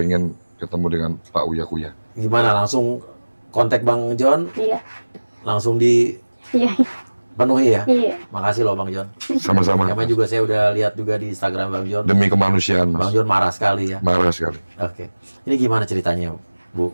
ketemu dengan Pak Uya Kuya. Gimana, langsung kontak Bang John? Iya. Langsung Iya. dipenuhi ya? Iya. Makasih loh Bang John. Sama-sama. Namanya juga saya udah lihat juga di Instagram Bang John. Demi kemanusiaan, Mas. Bang John marah sekali ya? Marah sekali. Oke. Ini gimana ceritanya,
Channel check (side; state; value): both; inverted; correlation -1.00